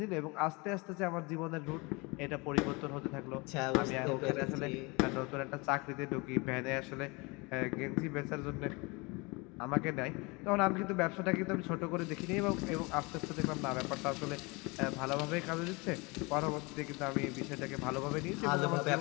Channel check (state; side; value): quieter; right; 27.0 dB